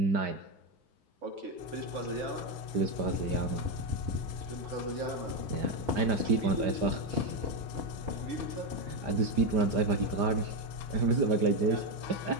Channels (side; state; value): left; late; 5.0 ms